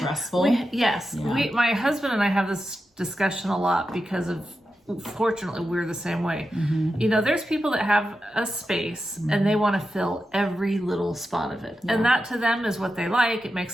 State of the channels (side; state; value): both; normal; correlation 0.90